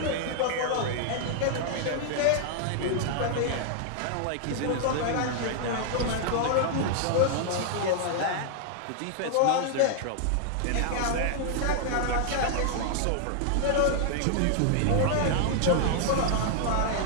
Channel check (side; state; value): both; different; correlation 0.00